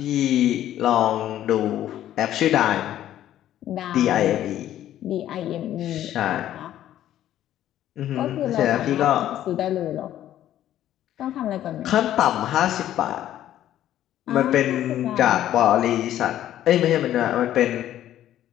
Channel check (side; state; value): right; quieter; 12.2 dB